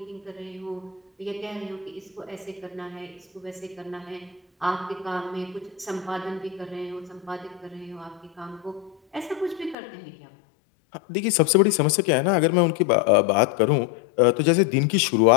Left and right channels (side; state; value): right; drops out; at 9.8 s